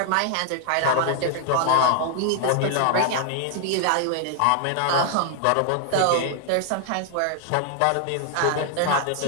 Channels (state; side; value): different; both; correlation 0.00